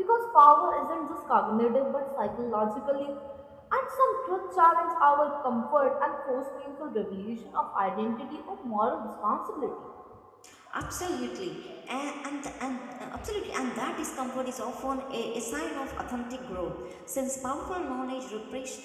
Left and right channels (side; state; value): both; identical; correlation 1.00